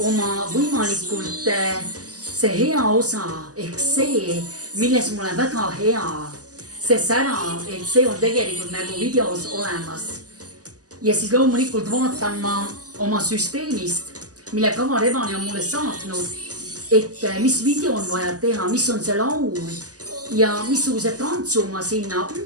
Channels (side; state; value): left; late; 0.67 ms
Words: oma võimalikult see hea osa ehk see, milles mul on väga hea, see sära, et see on tegelikult nagu videos olemas. Ja siis loomulikult vaatan ma oma süsteemist, mille Kava Rebane on mulle saatnud, et mis video on vaja teha, mis on see laul ja missuguse tantsu ma sinna